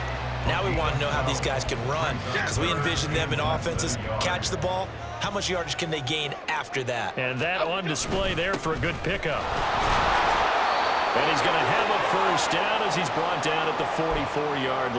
Now we want to know how these guys can run because we envision them in offenses, catch the ball. How much yardage can they gain after that? And that on display there for a good pickup. And he's going to have a first down as he's brought down at the 44-yard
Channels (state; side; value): identical; both; correlation 1.00